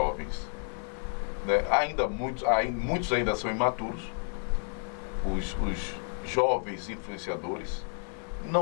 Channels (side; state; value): right; silent; 55 dB below the other